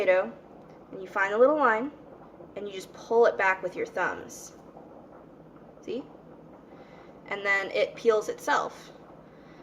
and you find a little line and you just pull it back with your thumbs. See? And then it peels itself.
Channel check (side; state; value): both; identical; correlation 1.00